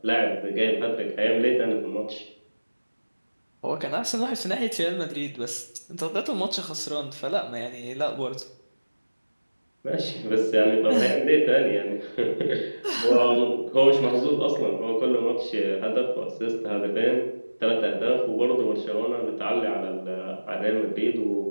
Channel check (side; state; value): both; inverted; correlation -1.00